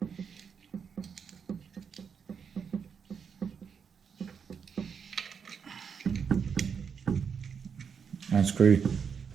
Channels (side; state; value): left; quieter; 6.6 dB